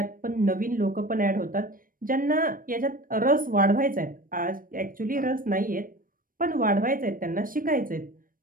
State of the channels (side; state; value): left; late; 0.40 ms